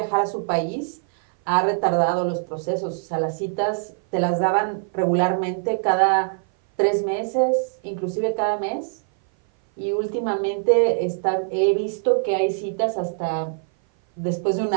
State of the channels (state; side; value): silent; left; 58 dB below the other